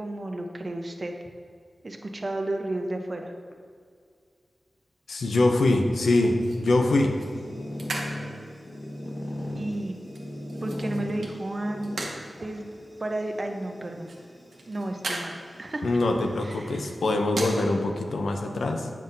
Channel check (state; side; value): normal; both; correlation 0.93